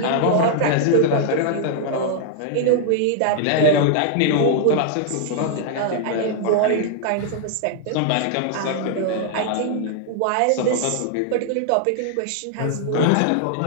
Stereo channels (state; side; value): different; both; correlation -0.01